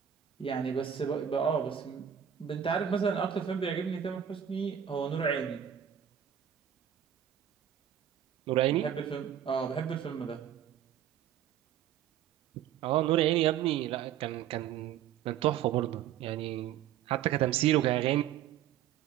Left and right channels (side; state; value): left; quieter; 9.7 dB